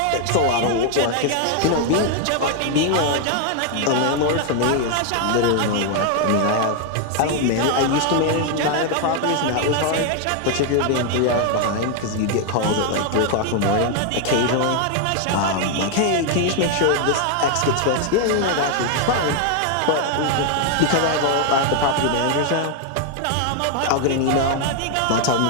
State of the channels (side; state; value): both; different; correlation 0.00